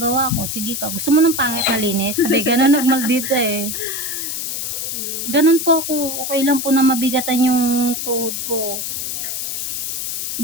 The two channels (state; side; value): noise; left; hiss, 3 dB below the sound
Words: ko. Sige ka, gusto mo ng pangit na linis? Sabi, ganun nagmaldita eh. Ganun po ako. Okay lang po na mabigatan yung tuhod ko.